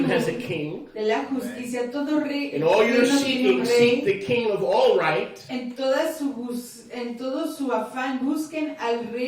has a rectitud, king. de la justicia. Todo rey, In all your reino tiene un seeking, seek rey. the king of all right. En todo su afán busquen al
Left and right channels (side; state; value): both; identical; correlation 1.00